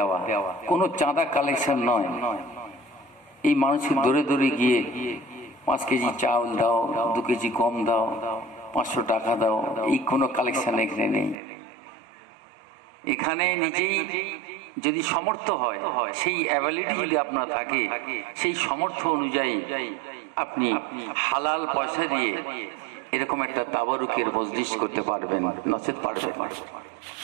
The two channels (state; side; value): drops out; left; at 11.4 s